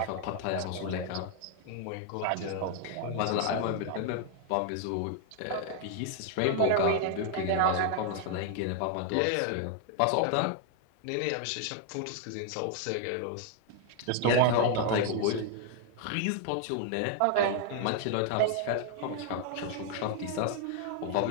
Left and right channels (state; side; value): different; both; correlation 0.00